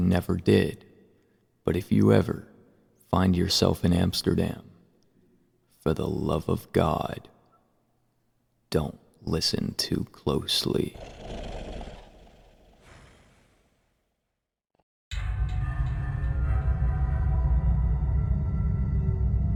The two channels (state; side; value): identical; both; correlation 1.00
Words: did. But if you ever find yourself in Amsterdam, for the love of God, don't listen too closely.